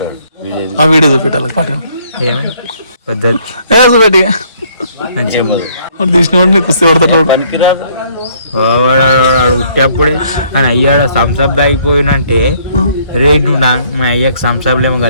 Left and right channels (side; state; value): both; inverted; correlation -0.64